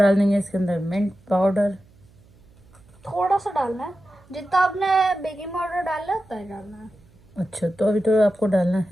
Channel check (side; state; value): right; noise; hum, 28 dB below the sound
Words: देंगे इसके अंदर मिंट पाउडर। थोड़ा सा डालना है, जितना आपने बेकिंग पाउडर डाला है उतना ही डालना है। अच्छा तो अभी तो आपको डालना